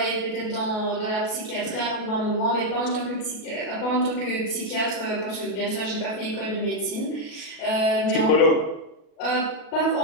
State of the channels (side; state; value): right; late; 37 ms